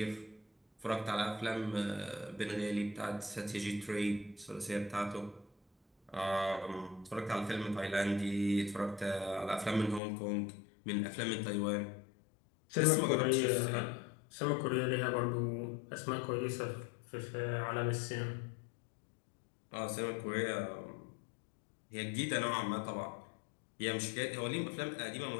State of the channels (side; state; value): right; drops out; at 10.0 s